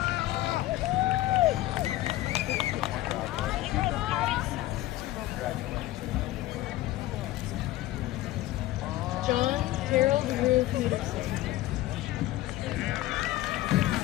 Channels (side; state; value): right; quieter; 16.0 dB